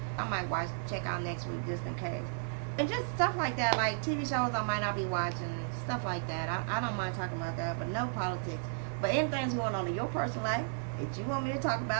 I might check out next week just in case. And just stuff like that, like TV shows I might not be watching, stuff like that. I don't mind talking about that, but no politics. But anything's going on in your personal life that you want me to talk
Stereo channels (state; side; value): silent; left; 55 dB below the other